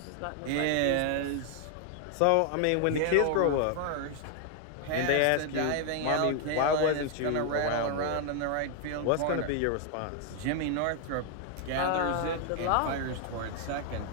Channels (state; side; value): different; both; correlation 0.00